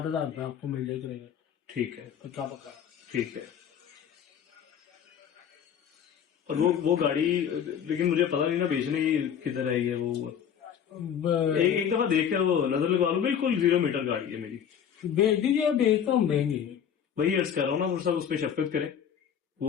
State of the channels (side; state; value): right; quieter; 8.5 dB